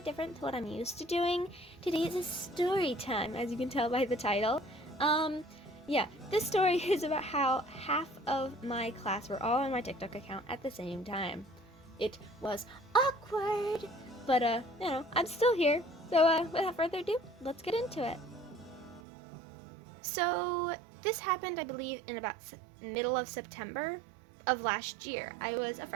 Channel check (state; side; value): drops out; left; at 19.0 s